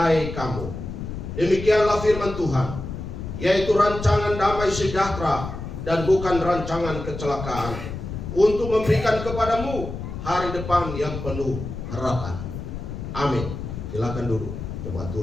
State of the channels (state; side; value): noise; left; rumble, 7 dB below the sound